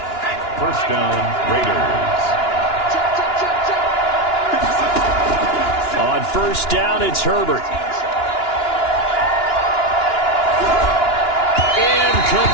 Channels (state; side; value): late; right; 2.9 ms